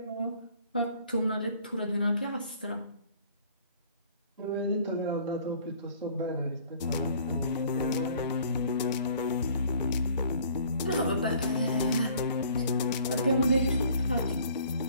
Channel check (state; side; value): inverted; both; correlation -0.55